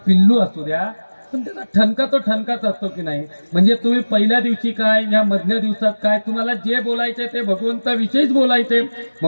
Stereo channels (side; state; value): both; inverted; correlation -1.00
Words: पिल्लू असू द्या, पण त्याचा ठणका तो ठणकाच असतो की नाही. म्हणजे तुम्ही पहिल्या दिवशी काय, या मधल्या दिवसात काय, तुम्हाला जे बोलायचंय ते भगवंताविषयीच बोलायचे,